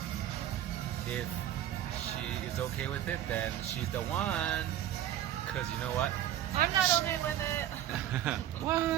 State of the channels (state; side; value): quieter; left; 11.8 dB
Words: If she is okay with it, then she's the one. Cause you know what? I'm not okay with it.